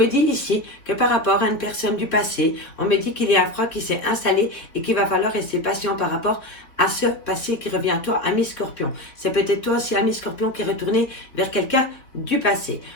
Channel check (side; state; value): right; late; 3.6 ms